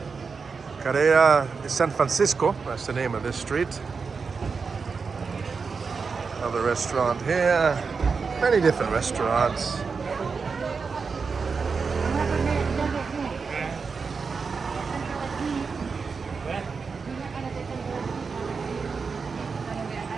Carrera de San Francisco. That's the name of this street. Another restaurant here. Many different restaurants.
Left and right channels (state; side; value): quieter; left; 5.1 dB